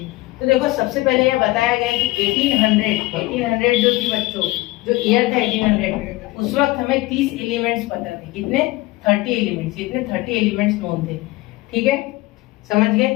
तो देखो, सबसे पहले यह बताया गया कि 1800 जो थी बच्चों, जो ईयर था 1800, उस वक्त हमें 30 एलिमेंट्स पता थे। कितने? 30 एलिमेंट्स। इतने 30 एलिमेंट्स नोन थे, ठीक है, समझ गए।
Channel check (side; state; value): right; quieter; 20.0 dB